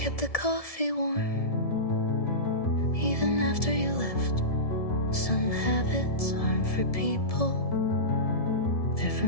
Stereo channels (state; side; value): late; right; 1.7 ms